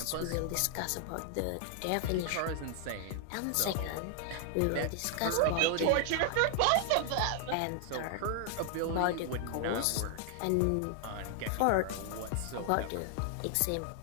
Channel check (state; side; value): different; both; correlation 0.00